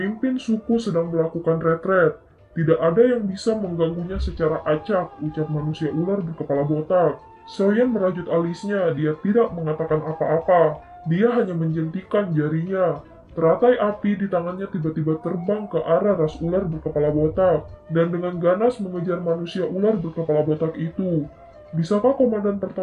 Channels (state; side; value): identical; both; correlation 1.00